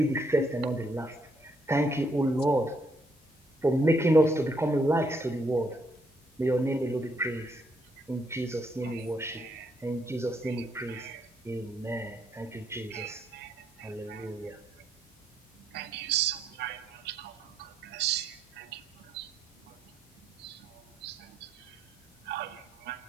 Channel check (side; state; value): both; normal; correlation 0.73